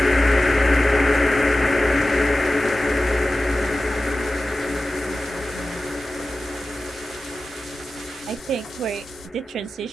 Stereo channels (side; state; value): both; normal; correlation 0.95